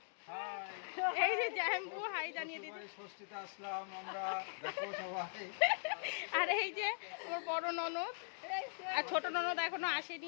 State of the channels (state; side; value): silent; right; digital silence